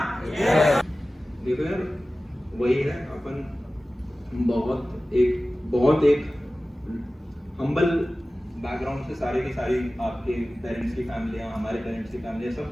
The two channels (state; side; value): normal; both; correlation 0.96